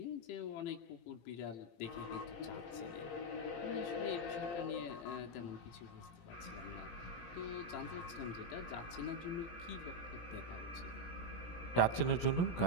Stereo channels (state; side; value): late; right; 17 ms